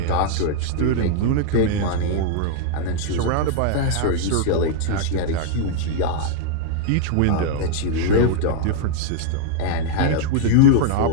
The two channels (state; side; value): different; both; correlation -0.01